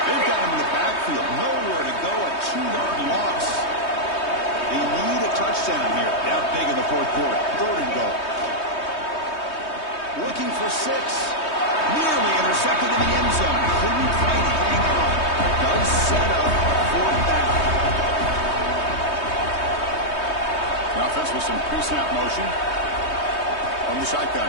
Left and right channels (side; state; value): right; late; 3.2 ms